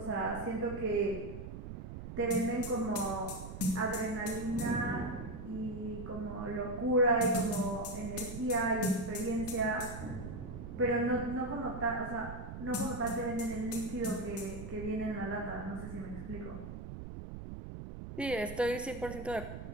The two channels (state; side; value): noise; right; rumble, 9 dB below the sound